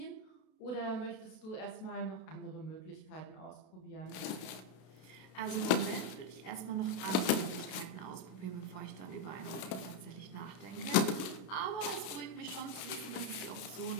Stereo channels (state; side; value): late; right; 32 ms